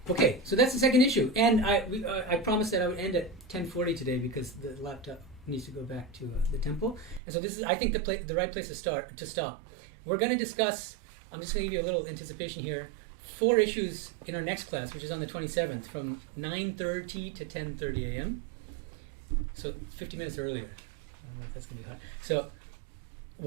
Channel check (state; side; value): drops out; left; at 7.2 s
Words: okay, so that's the second issue. And I promised that I would end at 10:40 today because the laptop needs to go back to the temple. And so this is, I think, the right place to stop. We're going to discuss. I'm just going to give you a little anticipation here. 4 issues in our next class, which is on the 27th, from 9:30 to 10:30 a.m. So 50 minutes earlier. I don't know if that's going to be hard. So,